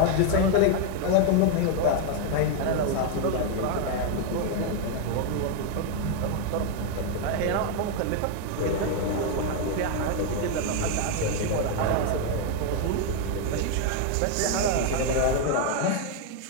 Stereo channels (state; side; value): different; both; correlation 0.01